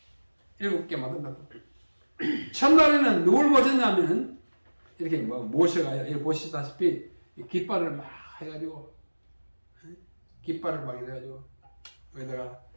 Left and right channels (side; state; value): both; inverted; correlation -1.00